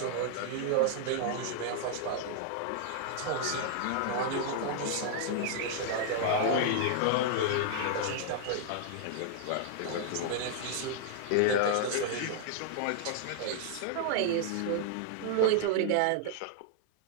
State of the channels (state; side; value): different; both; correlation -0.01